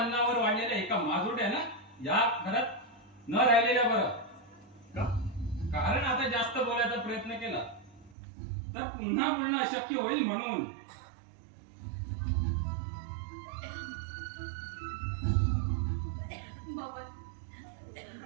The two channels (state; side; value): drops out; left; at 8.2 s